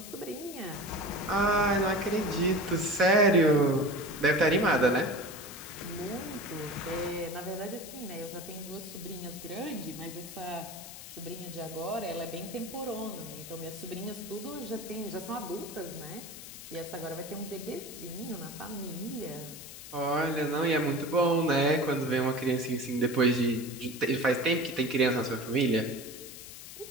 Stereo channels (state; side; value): noise; left; hiss, 13 dB below the sound